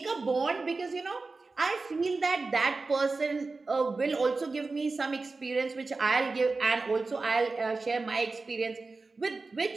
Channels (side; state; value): left; quieter; 3.8 dB